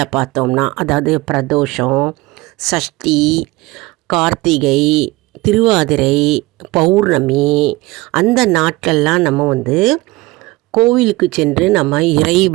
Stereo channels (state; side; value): quieter; left; 21.0 dB